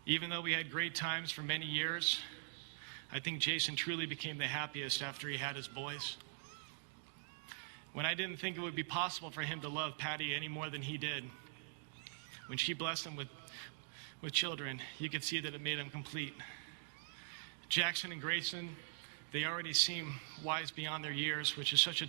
Even though we had great times for many years, I think Jason truly became the happiest after he had his boys. When I didn't think it would be possible for him to love Patty any more than he did, when she blessed him with children, you could see that it made him complete. Jackson and Grayson, they already seem wise beyond their years, which is such a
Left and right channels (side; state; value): left; silent; digital silence